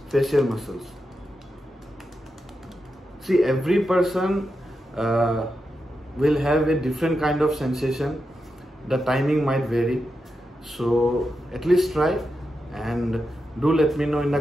facial muscles. See, every person will have a different kind of sensation. The timing might vary. So at least try, and do let me know in the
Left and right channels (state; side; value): normal; both; correlation 0.88